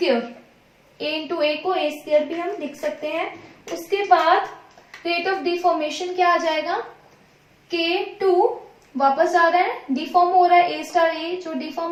A into A को A स्क्वायर भी हम लिख सकते हैं। उसके बाद रेट ऑफ डिफॉर्मेशन क्या आ जाएगा, K2 वापस आ रहा है, डिफॉर्म हो रहा है A स्टार, A जो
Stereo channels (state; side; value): identical; both; correlation 1.00